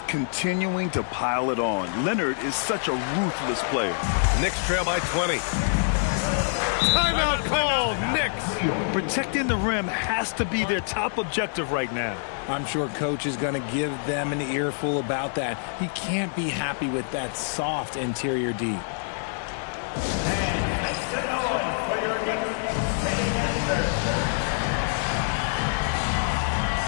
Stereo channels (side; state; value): right; silent; digital silence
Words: continuing to pile it on. Leonard is such a ruthless player. Knicks trail by 20. Timeout called, Knicks. Protecting the rim has to be their top objective right now. I'm sure coach is going to give them an earful about that. He can't be happy with that soft interior D. And make some noise for your Knicks sitting answer.